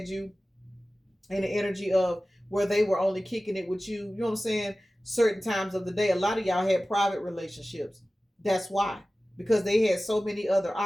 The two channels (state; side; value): normal; both; correlation 0.96